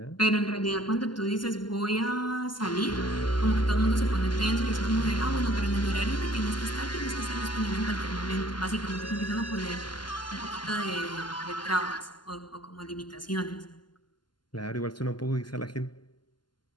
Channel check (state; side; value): late; right; 0.71 ms